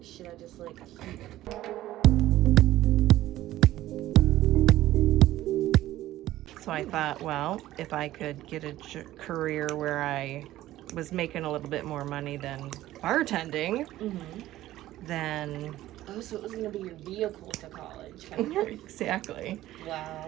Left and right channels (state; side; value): quieter; left; 14.8 dB